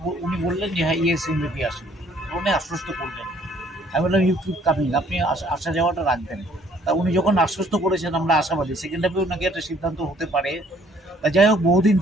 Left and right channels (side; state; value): both; normal; correlation 0.61